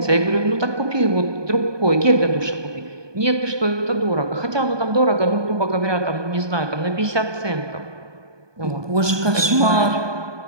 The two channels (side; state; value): left; late; 1.2 ms